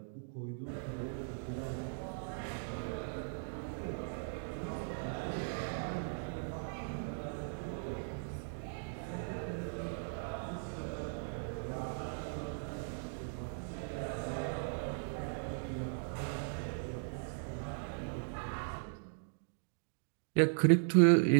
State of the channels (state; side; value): silent; left; digital silence